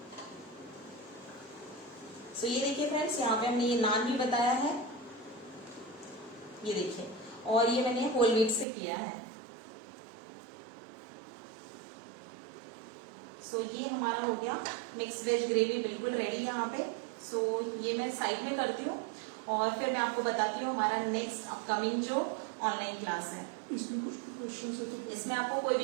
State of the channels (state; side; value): drops out; left; at 8.7 s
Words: सो ये देखिए फ्रेंड्स, यहाँ पे हमने ये नान भी बताया है, ये देखिए, और ये मैंने होल व्हीट से किया है। सो ये हमारा हो गया मिक्स वेज ग्रेवी, बिल्कुल रेडी है यहाँ पे। सो ये मैं साइड में करती हूँ और फिर मैं आपको बताती हूँ हमारा नेक्स्ट अपकमिंग जो ऑनलाइन क्लास है। इसमें कुछ क्वेश्चन है तो इसमें आपको कोई